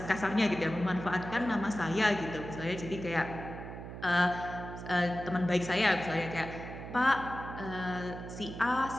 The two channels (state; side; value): noise; right; hum, 10 dB below the sound